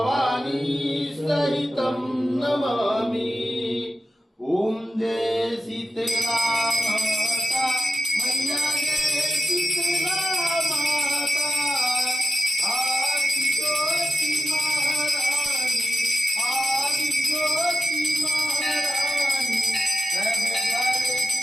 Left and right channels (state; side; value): normal; both; correlation 0.93